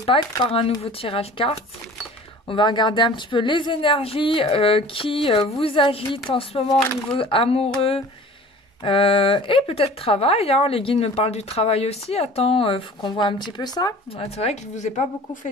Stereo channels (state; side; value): normal; both; correlation 0.44